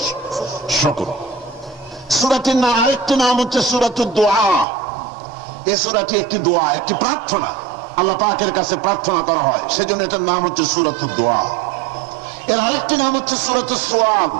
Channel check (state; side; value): drops out; left; at 4.7 s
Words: শুকর। সূরাটির নাম আরেকটি নাম হচ্ছে সূরাতুদ দুআ। এই সূরাটি একটি দোয়া, একটি প্রার্থনা, আল্লাহ পাকের কাছে প্রার্থনা করা হয়, সেজন্য এটার নাম হচ্ছে সূরাতুদ দুআ। এর আরেকটি নাম হচ্ছে সূরাতুস সুআল,